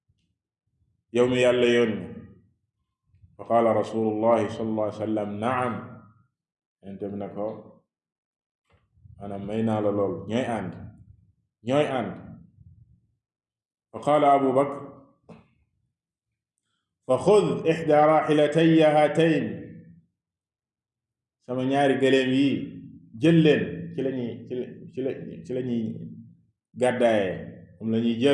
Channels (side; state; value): both; identical; correlation 1.00